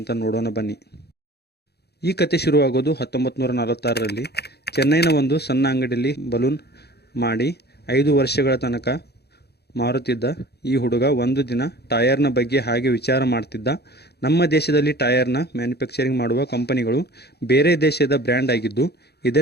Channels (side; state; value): right; late; 0.48 ms